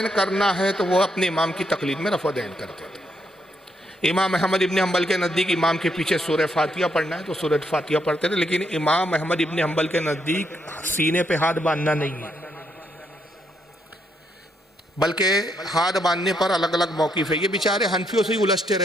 کرنا ہے تو وہ اپنے امام کی تقلید میں رفع دین کرتے تھے۔ امام احمد ابن حنبل کے نزدیک امام کے پیچھے سورہ فاتحہ پڑھنا ہے تو سورہ فاتحہ پڑھتے تھے، لیکن امام احمد ابن حنبل کے نزدیک سینے پہ ہاتھ باندھنا نہیں ہے، بلکہ ہاتھ باندھنے پر الگ الگ موقف ہے۔ یہ بیچارے حنفیوں سے ہی الجھتے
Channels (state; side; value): normal; both; correlation 0.76